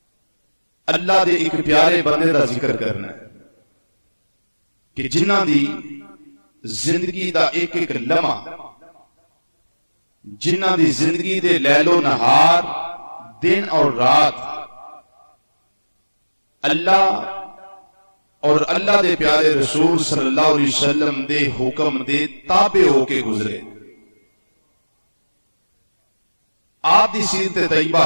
اللہ دے ایک پیارے بندے دا ذکر کرنا ہے کہ جنہ دی زندگی دا ایک ایک لمحہ، جنہ دی زندگی دے لیل و نہار، دن اور رات اللہ اور اللہ دے پیارے رسول صلی اللہ علیہ وسلم دے حکم دے تابع ہو کے گزرے۔ آپ دی سیرت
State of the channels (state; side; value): inverted; both; correlation -1.00